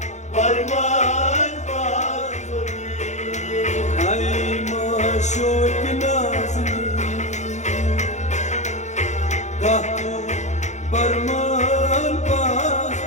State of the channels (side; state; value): right; late; 0.34 ms